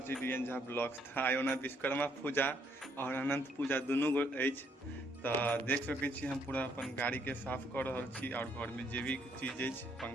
छी डीएन झा ब्लॉग्स। आइ ओना विश्वकर्मा पूजा और अनंत पूजा दुनू गो अछि, तऽ देख सकै छी हम पूरा अपन गाड़ीके साफ कऽ रहल छी और घरमे जे भी चीज अछि,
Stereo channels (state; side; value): normal; both; correlation 0.70